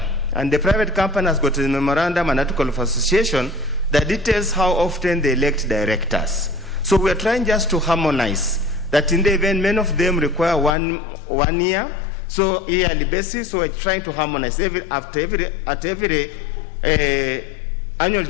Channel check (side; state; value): right; drops out; at 10.7 s